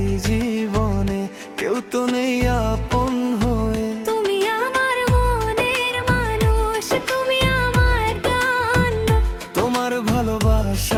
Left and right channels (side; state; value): both; identical; correlation 1.00